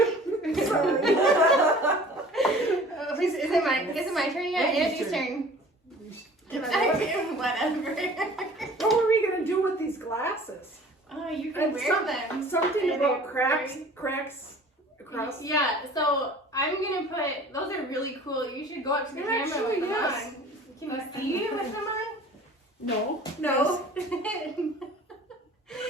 Sorry. Oh, is it my turn yet? Andy's Andy's turn. Whatever. What were we gonna do with these glasses? Oh, you can And wear them. Something And about they're cracks across. Yeah, so I'm gonna put, those are really cool. You should go up to the camera Actually, with them yes. on. Can you see with them on? No. No.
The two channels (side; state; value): both; normal; correlation 0.47